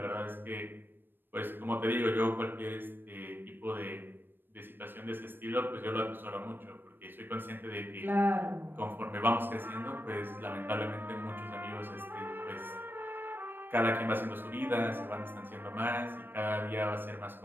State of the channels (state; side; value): late; left; 0.096 ms